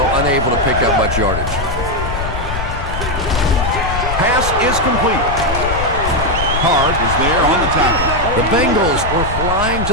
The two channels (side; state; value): left; noise; rumble, 5 dB below the sound